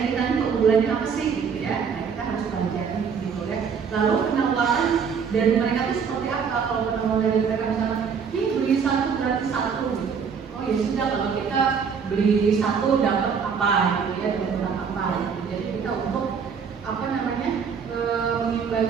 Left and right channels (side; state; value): left; quieter; 6.4 dB